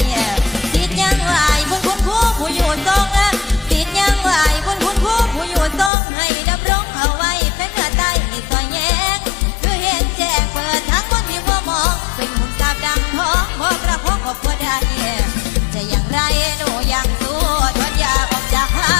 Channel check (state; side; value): drops out; right; at 5.9 s